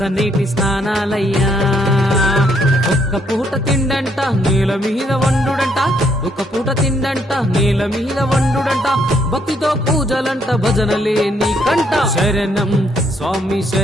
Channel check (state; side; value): normal; both; correlation 0.71